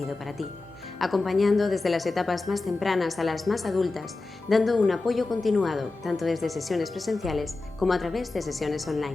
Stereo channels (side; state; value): right; quieter; 3.4 dB